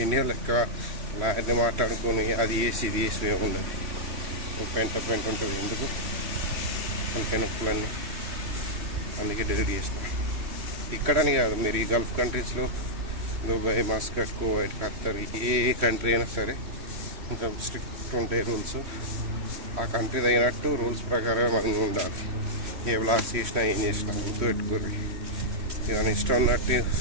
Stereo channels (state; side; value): late; left; 3.1 ms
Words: ఇండియా లెక్క లాయర్ని మాట్లాడుకొని అది వేసి ఇది వేసి ఏముండదు. పెంట ఉంటుంది. ఎందుకు తలకాయ నొప్పులన్నీ. అందుకే డిలీట్ చేసిన. ఇక్కడని కాదు, మీరు ఈ గల్ఫ్ కంట్రీస్లో దుబాయ్, మస్కట్, కువైట్, ఖత్తర్, ఏ కంట్రీ అయినా సరే కొంచెం స్ట్రిక్ట్ ఉంటాయి రూల్స్. ఆ కంట్రీ అయినట్టు రూల్స్ ప్రకారం మనం ఉండాలి. ఏ బ్లాగ్స్ చేసినా ఏం చేసినా గుర్తుపెట్టుకోరు. ఇక ఇష్టం ఉన్నట్టు